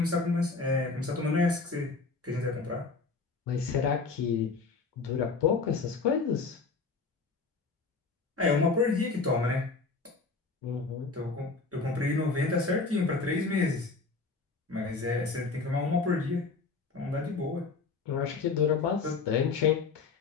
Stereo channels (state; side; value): quieter; right; 4.2 dB